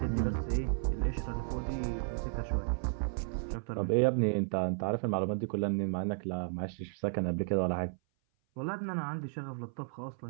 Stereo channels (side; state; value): left; silent; 55 dB below the other